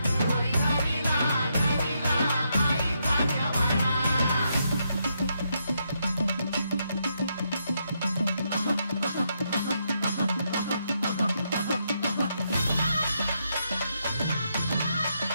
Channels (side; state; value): both; inverted; correlation -0.79